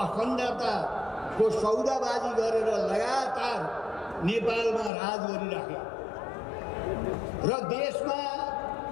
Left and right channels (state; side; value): drops out; right; at 4.9 s